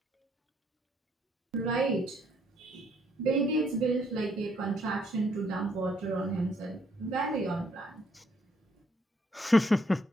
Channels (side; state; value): both; normal; correlation 0.69